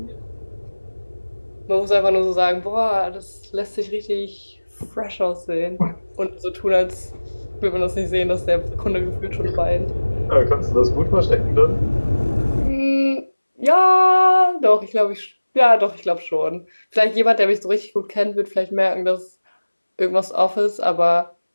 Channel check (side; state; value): both; inverted; correlation -1.00